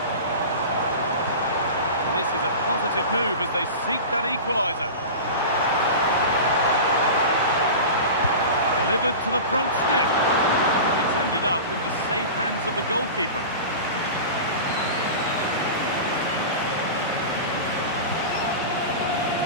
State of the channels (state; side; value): inverted; both; correlation -0.30